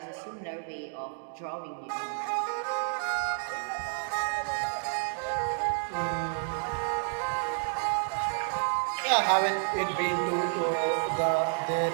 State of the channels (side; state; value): left; silent; digital silence